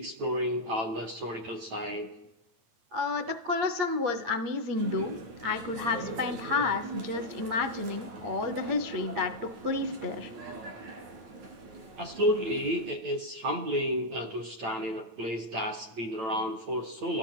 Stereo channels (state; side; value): late; left; 9.0 ms